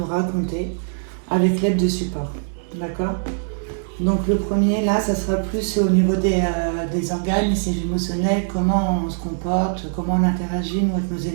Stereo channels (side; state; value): left; silent; digital silence